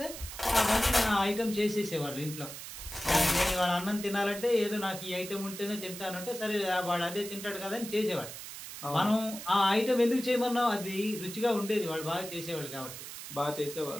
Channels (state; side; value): noise; right; hiss, 11 dB below the sound